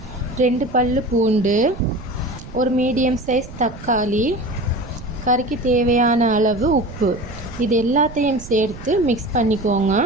2 பல்லு பூண்டு, ஒரு மீடியம் சைஸ் தக்காளி, கறிக்கு தேவையான அளவு உப்பு, இது எல்லாத்தையும் சேர்த்து மிக்ஸ் பண்ணிக்கோங்க.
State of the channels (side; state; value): right; noise; rumble, 15 dB below the sound